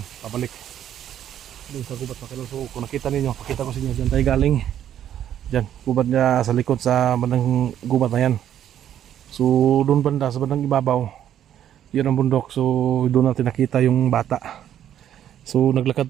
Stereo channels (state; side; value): quieter; left; 10.5 dB